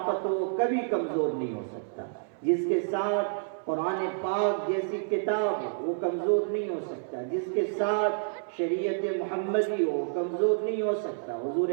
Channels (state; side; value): silent; left; 59 dB below the other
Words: ہو وہ کبھی کمزور نہیں ہو سکتا، جس کے ساتھ قرآن پاک جیسی کتاب ہو وہ کمزور نہیں ہو سکتا، جس کے ساتھ شریعت محمدی ہو وہ کمزور نہیں ہو سکتا۔ حضور